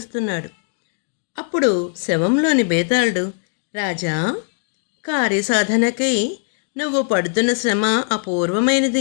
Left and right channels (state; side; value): silent; right; digital silence